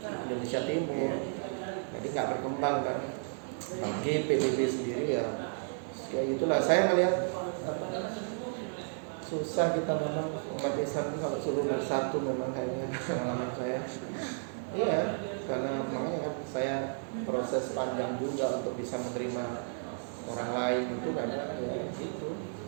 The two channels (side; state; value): left; silent; digital silence